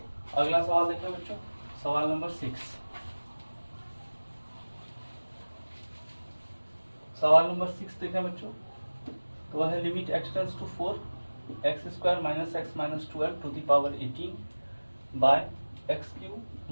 अगला सवाल देखें बच्चों, सवाल नंबर 6। सवाल नंबर 6 देखें बच्चों तो वह है limit x tends to 4 x square minus x minus 12 to the power 18 by x cube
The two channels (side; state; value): both; inverted; correlation -1.00